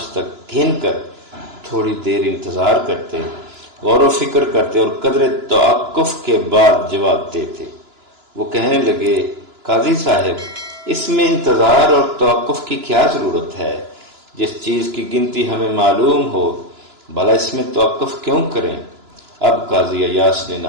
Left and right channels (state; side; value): late; left; 2.9 ms